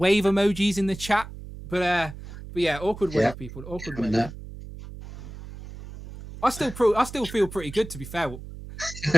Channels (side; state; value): right; noise; hum, 13 dB below the sound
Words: emojis in the chat. But yeah, awkward wave, people. Awkward wave. I still feel pretty good, to be fair.